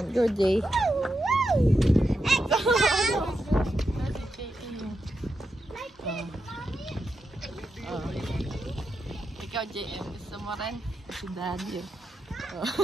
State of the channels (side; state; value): both; normal; correlation 0.87